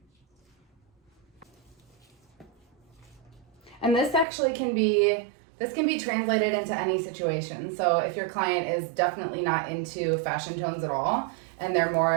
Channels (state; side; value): drops out; left; at 4.2 s